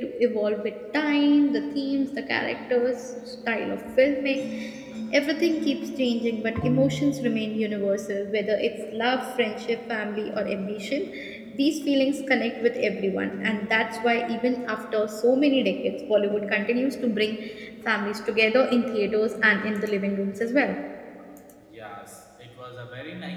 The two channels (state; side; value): identical; both; correlation 1.00